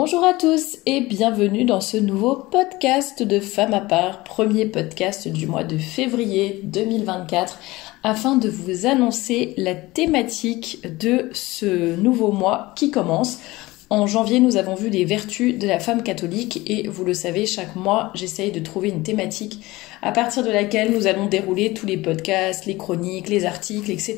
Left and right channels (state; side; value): quieter; right; 20.0 dB